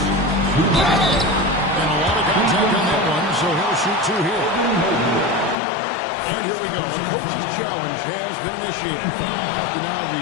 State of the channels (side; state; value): right; drops out; at 5.6 s